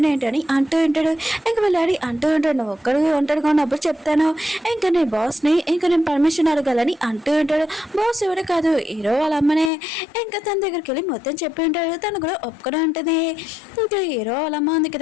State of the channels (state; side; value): drops out; right; at 9.7 s